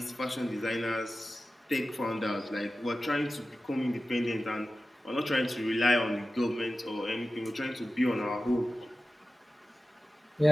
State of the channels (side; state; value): both; normal; correlation 0.95